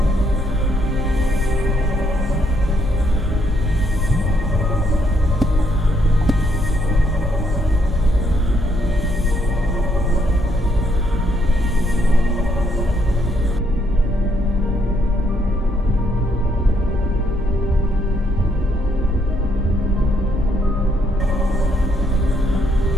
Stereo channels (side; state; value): both; normal; correlation 0.72